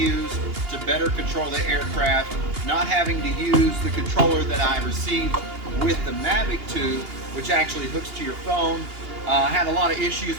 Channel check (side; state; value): left; late; 2.8 ms